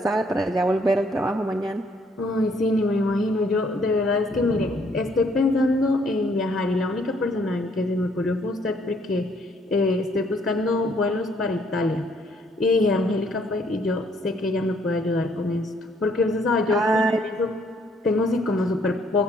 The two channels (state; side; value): normal; both; correlation 0.66